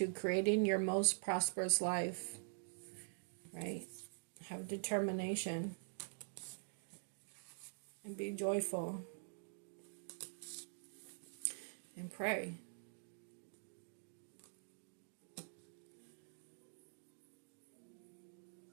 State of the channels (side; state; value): left; silent; digital silence